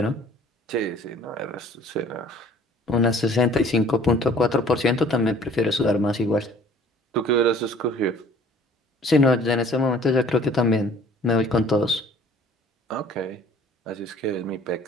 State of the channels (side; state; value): both; normal; correlation 0.53